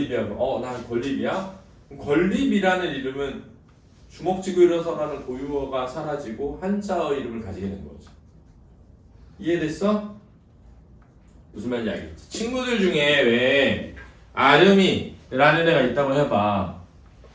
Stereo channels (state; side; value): identical; both; correlation 1.00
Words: 난 권립이야? 권립이라는 이름은 주먹 쥐고 일어서라는 고유어가 사라지고 한자어 이름을 가지게 된 거지. 이해됐어? 무슨 말인지 알겠지? 친구들 중에 왜 아름이라는 애가 있다고 해봐.